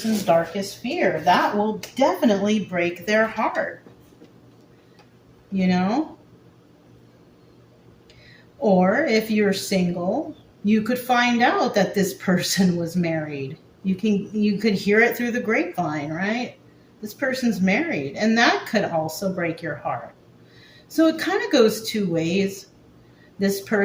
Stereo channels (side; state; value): both; identical; correlation 1.00